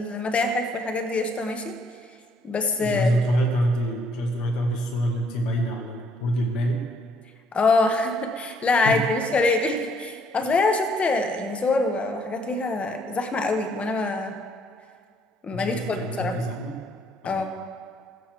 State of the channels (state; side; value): normal; both; correlation 0.67